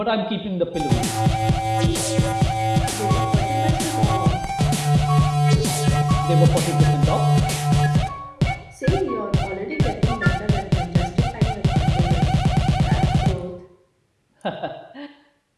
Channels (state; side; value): identical; both; correlation 1.00